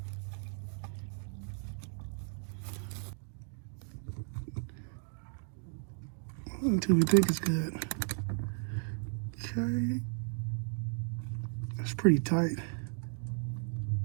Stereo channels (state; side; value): silent; left; 54 dB below the other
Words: Until we think it's good. Okay. That's pretty tight.